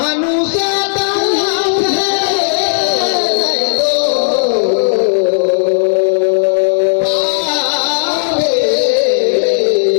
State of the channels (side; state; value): right; silent; digital silence